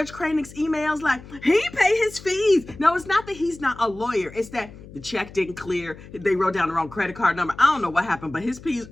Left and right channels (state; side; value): noise; left; hum, 18 dB below the sound